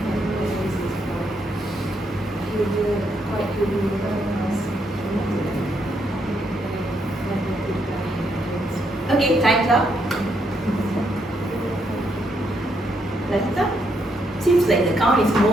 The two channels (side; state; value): both; normal; correlation 0.76